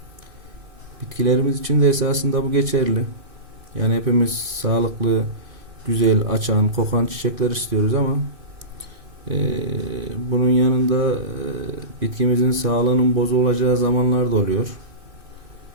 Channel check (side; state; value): left; late; 2.6 ms